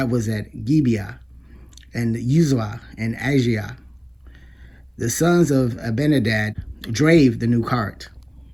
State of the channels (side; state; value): both; identical; correlation 1.00